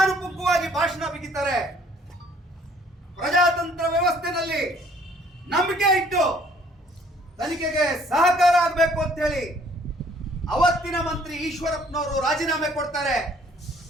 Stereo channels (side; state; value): both; normal; correlation 0.59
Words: ಭಾಷಣ ಬಿಗಿತಾರೆ. ಪ್ರಜಾತಂತ್ರ ವ್ಯವಸ್ಥೆಯಲ್ಲಿ ನಂಬಿಕೆ ಇಟ್ಟು ತನಿಖೆಗೆ ಸಹಕಾರ ಆಗಬೇಕು ಅಂತ ಹೇಳಿ ಅವತ್ತಿನ ಮಂತ್ರಿ ಈಶ್ವರಪ್ಪನವರು ರಾಜೀನಾಮೆ ಕೊಡ್ತಾರೆ.